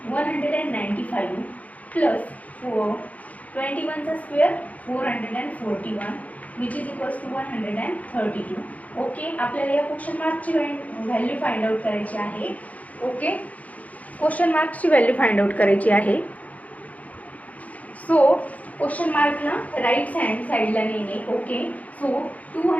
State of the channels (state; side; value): late; right; 0.072 ms